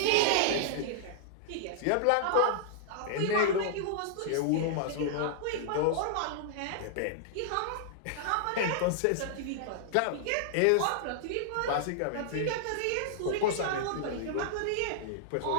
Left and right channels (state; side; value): different; both; correlation -0.01